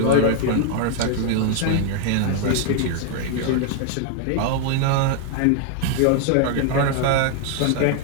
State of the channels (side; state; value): both; different; correlation 0.00